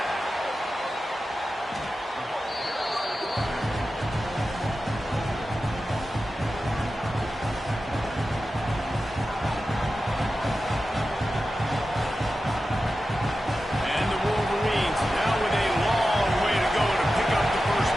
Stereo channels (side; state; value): both; normal; correlation 0.93